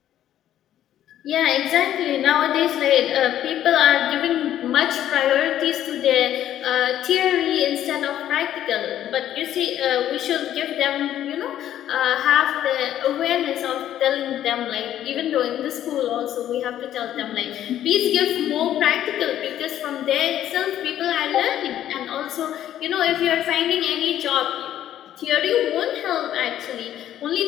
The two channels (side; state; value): right; quieter; 11.6 dB